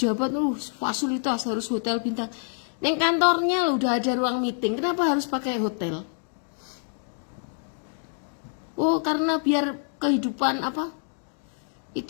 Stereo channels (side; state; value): right; silent; digital silence